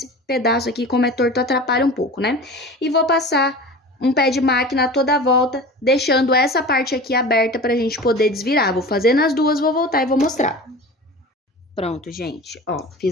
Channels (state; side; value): normal; both; correlation 0.35